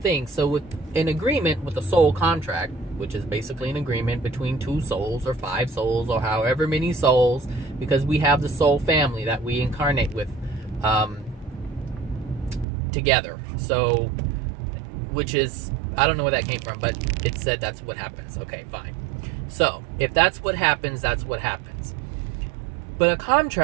So with an agreement with a soul contract, which is basically an agreement between 2 souls or 5 souls or however many souls, because we have the soul family that we incarnate with together. So, which is, I don't know where that came from, but it said that's what happens. Okay, fine. So if that's what happens, that's what happens. But a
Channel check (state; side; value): drops out; left; at 12.7 s